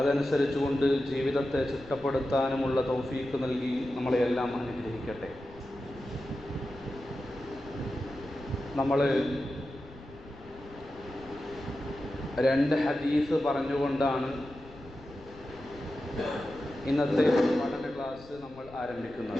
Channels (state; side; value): noise; left; rumble, 20 dB below the sound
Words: ജീവിതത്തെ ചിട്ടപ്പെടുത്താനുമുള്ള തൗഫീഖ് നൽകി നമ്മളെയെല്ലാം അനുഗ്രഹിക്കട്ടെ. നമ്മൾ രണ്ട് ഹദീസ് പറഞ്ഞുകൊണ്ടാണ് ഇന്നത്തെ പഠന ക്ലാസ് നമ്മൾ